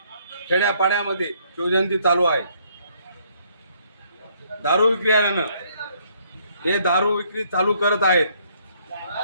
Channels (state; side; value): inverted; both; correlation -0.67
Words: खेड्यापाड्यामध्ये शिवजयंती चालू आहे। दारू विक्रेत्यानं हे दारू विक्री चालू करत आहेत